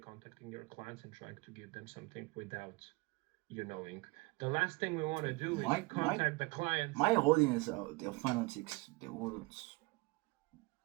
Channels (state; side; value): quieter; left; 24.7 dB